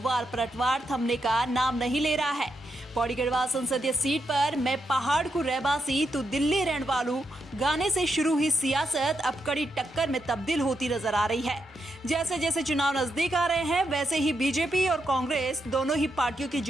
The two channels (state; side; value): normal; both; correlation 0.82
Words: वार पलटवार थमने का नाम नहीं ले रहा है। पौड़ी गढ़वाल संसदीय सीट पर मैं पहाड़ को रहवासी तो दिल्ली रहने वालू गाने से शुरू हुई सियासत अब कड़ी टक्कर में तब्दील होती नजर आ रही है। जैसे जैसे चुनाव नजदीक आ रहे हैं, वैसे ही बीजेपी और कांग्रेस दोनों ही पार्टियों की